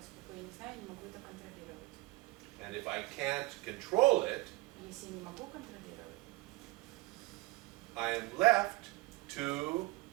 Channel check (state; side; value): quieter; left; 21.3 dB